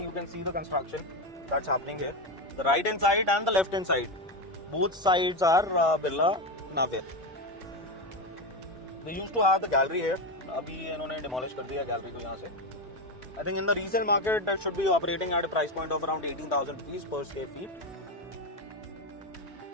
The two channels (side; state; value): both; normal; correlation 0.14